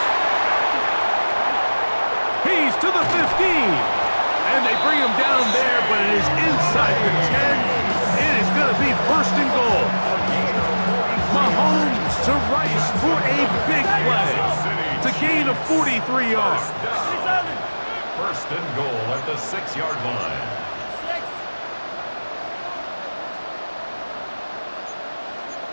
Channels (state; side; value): inverted; both; correlation -1.00